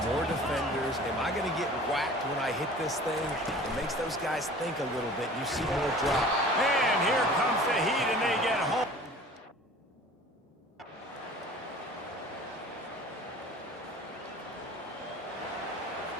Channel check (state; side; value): normal; both; correlation 0.44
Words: more defenders. Am I going to get whacked when I hit this thing? It makes those guys think a little bit. You see more drop. And here comes the heat, and they get home.